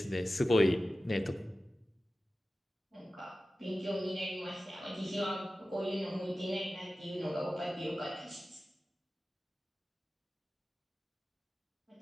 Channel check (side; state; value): both; normal; correlation 0.95